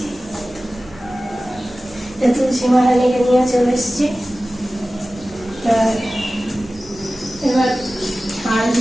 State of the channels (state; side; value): noise; right; rumble, 23 dB below the sound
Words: তুলসী মহারানীকে নিয়ে চলে এসেছি। এবার আর